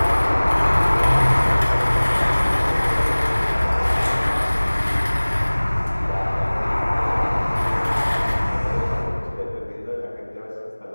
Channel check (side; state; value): both; inverted; correlation -1.00